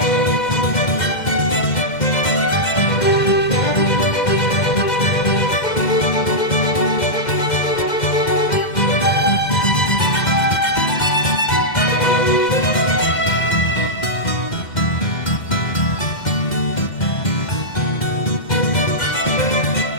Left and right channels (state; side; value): late; right; 2.1 ms